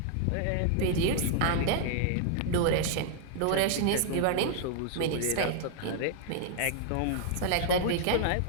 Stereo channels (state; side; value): different; both; correlation 0.00